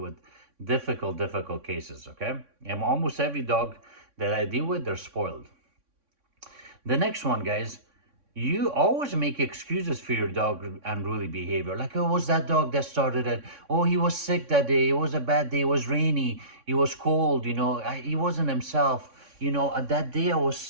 difficult cases, okay? And almost every dog that I deal with, they're spoiled. The next one, guys, you always make excuses for your dog unruly behavior. Like, oh, it was that dog that started it. Oh, he was sick that day. It was a bad day. It was rainy. It was cold. He wasn't himself. That day I was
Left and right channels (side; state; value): left; late; 3.6 ms